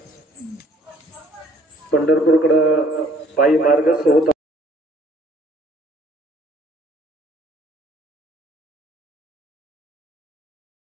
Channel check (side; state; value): both; normal; correlation 0.59